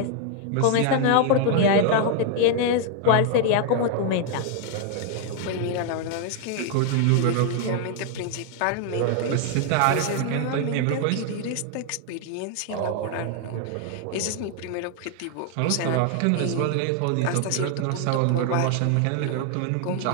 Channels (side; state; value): both; different; correlation 0.00